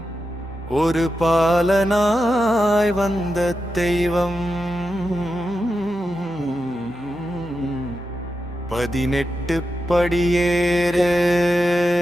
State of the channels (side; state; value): both; normal; correlation 0.88